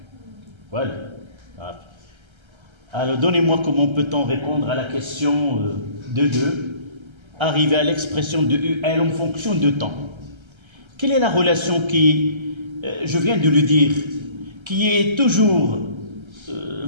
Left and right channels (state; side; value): late; left; 1.3 ms